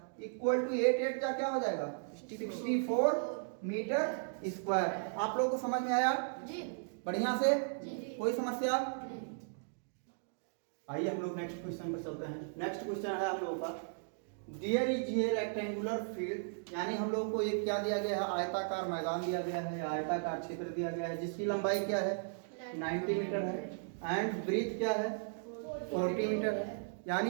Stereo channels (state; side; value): silent; left; digital silence